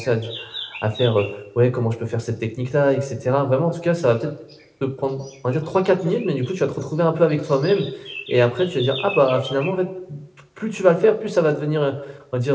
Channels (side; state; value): both; identical; correlation 1.00